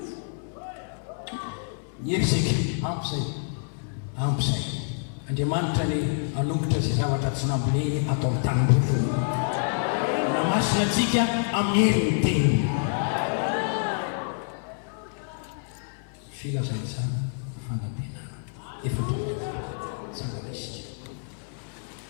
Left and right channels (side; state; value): right; silent; digital silence